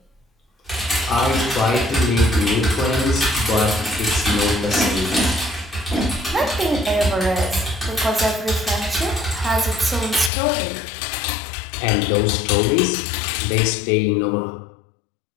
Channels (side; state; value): right; drops out; at 10.3 s